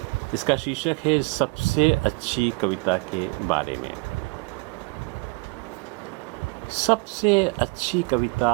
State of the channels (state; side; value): quieter; left; 28.9 dB